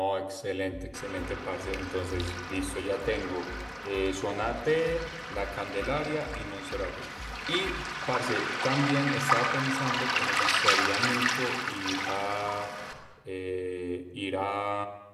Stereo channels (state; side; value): identical; both; correlation 1.00